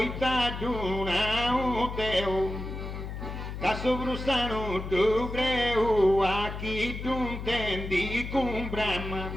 taduna un teo. Che su brusano tu creu a chi tu intendi con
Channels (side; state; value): left; noise; hum, 7 dB below the sound